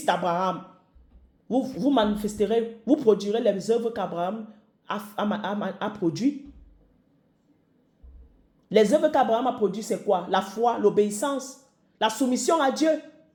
d'Abraham, vous manifesterez, vous produirez les œuvres qu'Abraham a produites. Les œuvres qu'Abraham a produites, c'est quoi? La foi, l'obéissance, la soumission à Dieu.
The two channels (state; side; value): identical; both; correlation 1.00